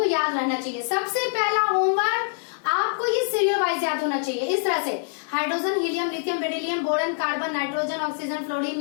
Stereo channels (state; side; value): silent; right; digital silence